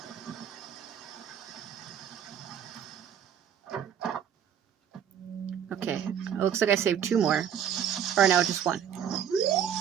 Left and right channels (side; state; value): left; quieter; 8.7 dB